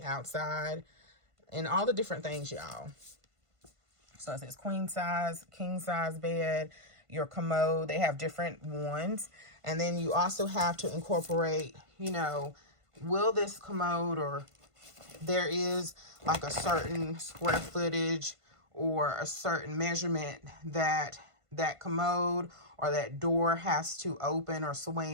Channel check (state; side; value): late; left; 1.5 ms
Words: outside, and all the different things, y'all. So it says queen size, king size bed, your commode. They have different ones. And then you also have to incorporate, you know, will this commode, or there is like a certain square footage or a certain measurement that that commode or that door has to open or